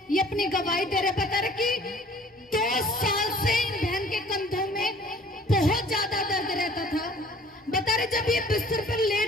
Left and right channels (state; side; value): normal; both; correlation 0.52